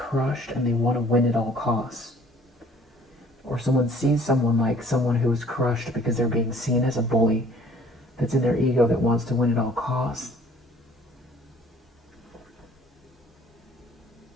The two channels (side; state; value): both; normal; correlation 0.55